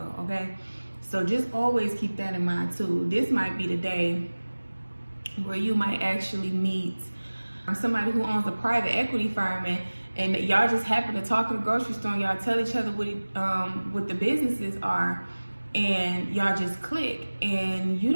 okay? So just always keep that in mind too. This might be the day where you might actually meet somebody who owns a private equity firm, and y'all just happen to talk in the grocery store, and y'all tell each other what the businesses are, and y'all just click, and you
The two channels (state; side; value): inverted; both; correlation -1.00